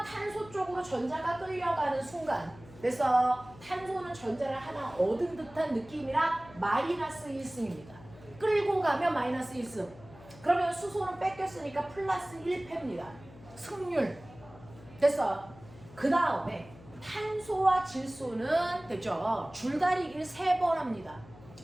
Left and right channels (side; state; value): left; noise; hum, 20 dB below the sound